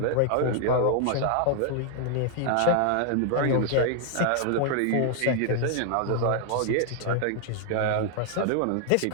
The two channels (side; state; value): both; different; correlation 0.00